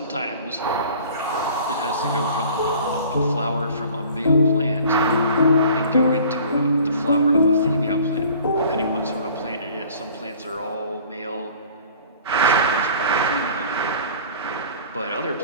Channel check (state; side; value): inverted; both; correlation -0.48